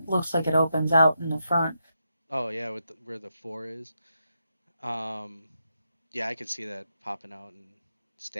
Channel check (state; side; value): inverted; both; correlation -0.83